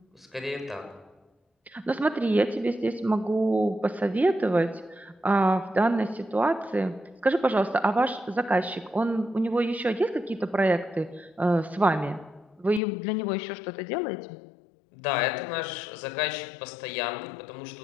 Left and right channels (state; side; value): drops out; right; at 12.8 s